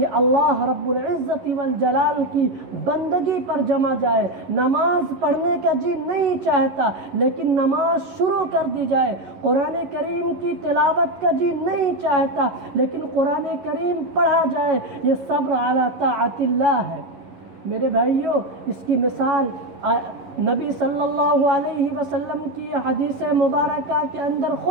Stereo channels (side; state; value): left; late; 11 ms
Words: اللہ رب العزت والجلال کی بندگی پر جمع جائے، نماز پڑھنے کا جی نہیں چاہتا لیکن نماز شروع کر دی جائے، قرآن کریم کی تلاوت کا جی نہیں چاہتا لیکن قرآن کریم پڑھا جائے، یہ صبر علی طاعت اللہ ہے۔ میرے بھائیوں، اس کی مثال نبی صلی اللہ علیہ وسلم کی حدیث مبارکہ کے اندر